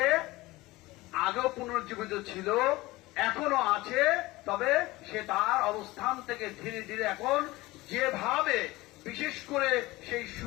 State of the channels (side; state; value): right; quieter; 20.0 dB